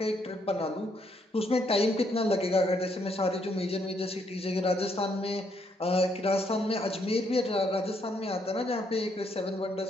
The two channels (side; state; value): both; normal; correlation 0.73